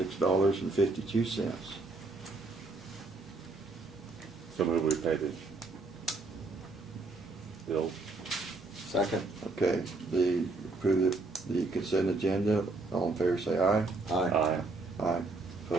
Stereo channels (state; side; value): quieter; left; 3.3 dB